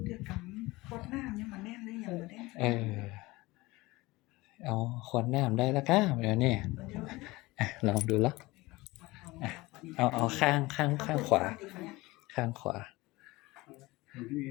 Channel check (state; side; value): quieter; right; 21.0 dB